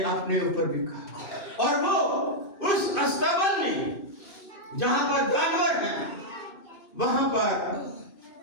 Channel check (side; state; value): right; late; 2.5 ms